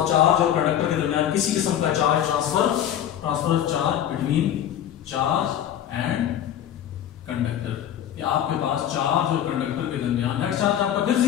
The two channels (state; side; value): quieter; right; 10.5 dB